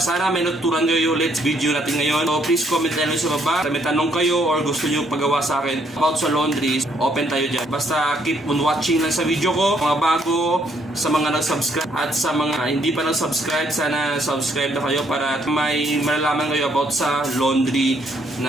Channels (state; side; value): normal; both; correlation 0.69